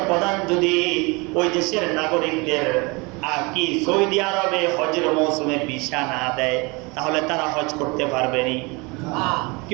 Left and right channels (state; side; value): quieter; left; 27.3 dB